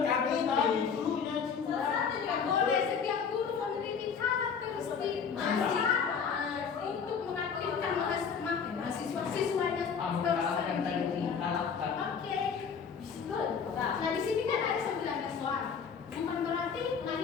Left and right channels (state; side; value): quieter; right; 6.4 dB